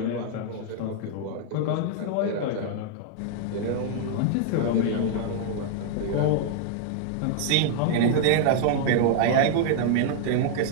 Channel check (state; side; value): different; both; correlation 0.00